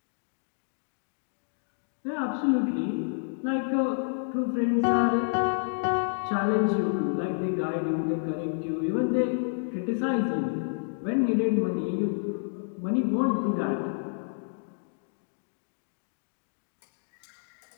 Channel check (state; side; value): silent; right; digital silence